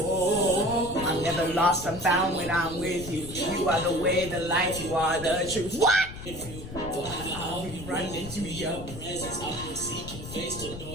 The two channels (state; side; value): noise; left; rumble, 11 dB below the sound